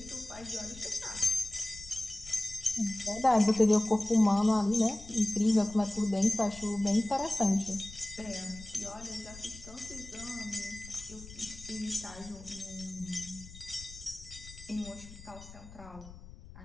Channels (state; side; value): noise; left; rumble, 17 dB below the sound